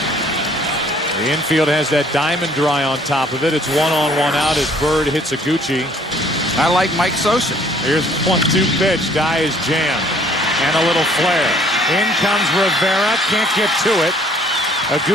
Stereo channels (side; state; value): both; normal; correlation 0.59